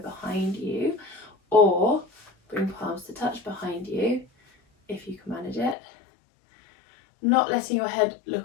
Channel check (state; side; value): drops out; right; at 5.8 s